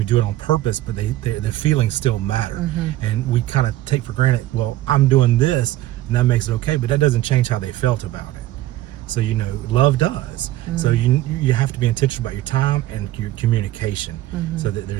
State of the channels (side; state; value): left; quieter; 15.3 dB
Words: do it on purpose, but their feelings still matter. And we kind of take for granted, well, I'm doing this and that makes it okay, but that doesn't change how they felt about it. So, you know, love does. So you have to be intentional about your time and your communication, so that